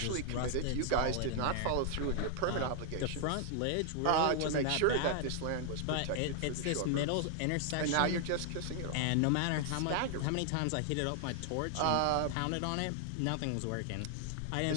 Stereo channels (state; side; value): different; both; correlation 0.00